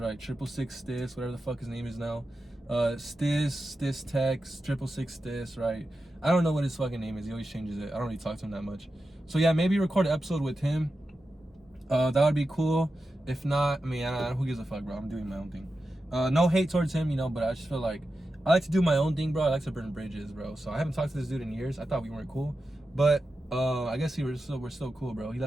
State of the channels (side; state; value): both; normal; correlation 0.91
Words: 666 Stis, whatever the fuck his name is now. Stis Tex, 666 Stis, right? I don't know what his fucking name is. He always changes it. I don't really talk to him that much. So yeah, maybe record an episode with him. That would be cool. If not, I mean, who gives a fuck, bro? I'm doing my own thing. No hate towards him, you know, but I just feel like I like to do my own thing, bro. I like to burn bridges, bro. So I haven't talked to this dude in years. I thought we weren't cool, but I guess we're still cool, bro. He